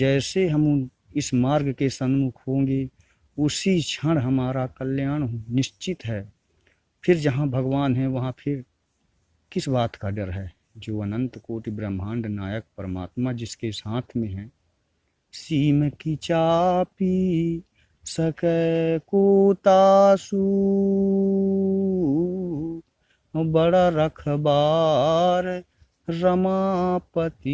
हम इस मार्ग के सन्मुख होंगे उसी क्षण हमारा कल्याण निश्चित है। फिर जहाँ भगवान है वहाँ फिर किस बात का डर है। जो अनंत कोटि ब्रह्मांड नायक परमात्मा जिसके साथ में है, सीम की चापी सकै को तासु, बड़ा रखबार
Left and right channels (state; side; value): identical; both; correlation 1.00